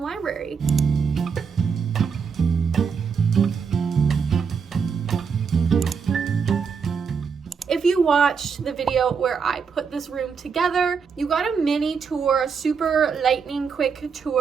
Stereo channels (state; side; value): quieter; left; 6.0 dB